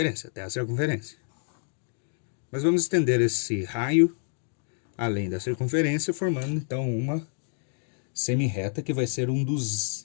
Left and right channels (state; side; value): silent; right; 59 dB below the other